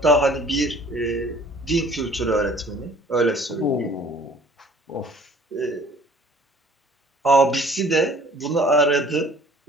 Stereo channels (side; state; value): both; normal; correlation 0.53